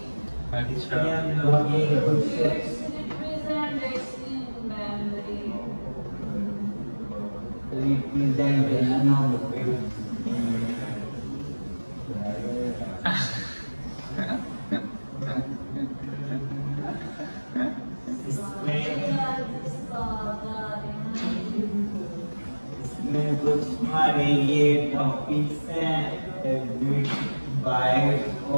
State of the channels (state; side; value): inverted; both; correlation -1.00